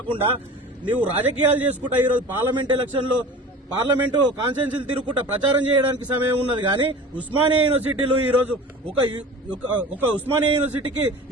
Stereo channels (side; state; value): both; normal; correlation 0.37